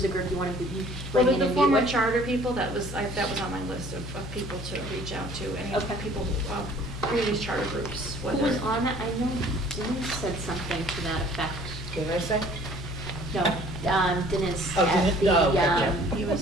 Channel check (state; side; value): noise; left; hum, 9 dB below the sound